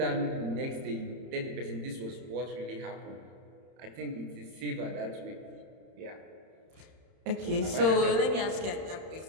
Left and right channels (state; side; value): late; left; 31 ms